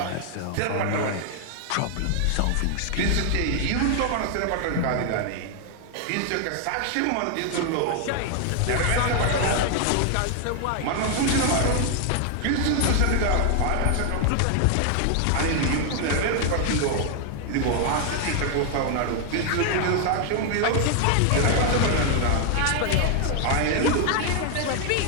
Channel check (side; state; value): both; different; correlation 0.00